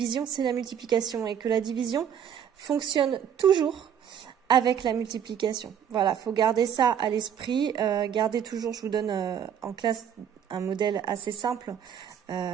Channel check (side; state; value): left; quieter; 8.7 dB